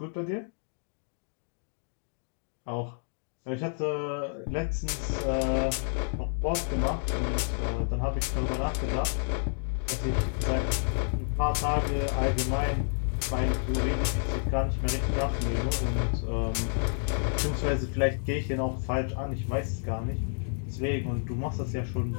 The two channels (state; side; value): silent; right; digital silence